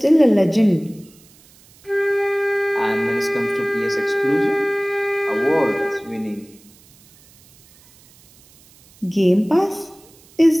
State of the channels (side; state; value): right; noise; hiss, 28 dB below the sound